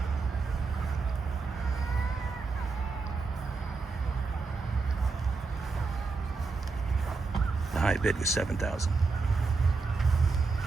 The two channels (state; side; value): quieter; left; 4.3 dB